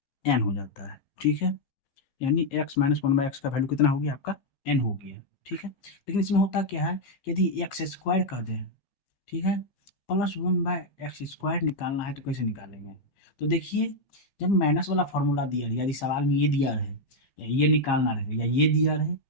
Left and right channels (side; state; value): right; late; 15 ms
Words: n हो जाता है। ठीक है, यानी x-1/x का वैल्यू कितना हो गया आपका, n हो गया। ठीक है, लेकिन इसमें होता क्या है, यदि एक्स स्क्वायर कर दें, ठीक है, +1/x² निकालना है तो कैसे निकालेंगे? तो देखिए, जब माइनस वाला फॉर्मूला दिया रहे, यदि सवाल में ये दिया रहे या ये निकालना रहे या ये दिया रहे